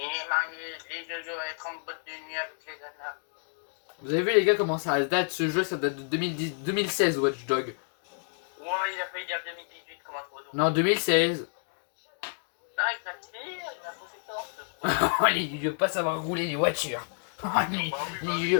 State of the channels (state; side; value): silent; right; 55 dB below the other